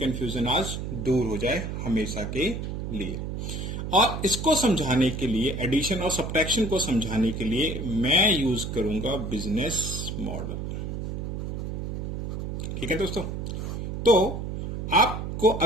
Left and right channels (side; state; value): right; noise; hum, 4 dB below the sound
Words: आज दूर हो जाए हमेशा के लिए। और इसको समझाने के लिए, एडिशन और सब्ट्रैक्शन को समझाने के लिए मैं यूज करूंगा बिजनेस मॉडल। ठीक है दोस्तों। तो आपको